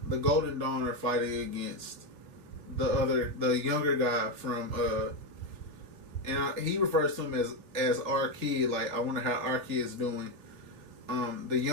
Golden Dawn are fighting against the younger guy from and he refers to him as our kid. Like, I wonder how our kid's doing. the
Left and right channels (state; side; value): late; left; 3.4 ms